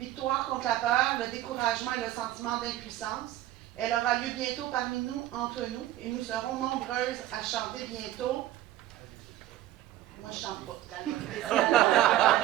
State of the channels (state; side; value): quieter; left; 14.1 dB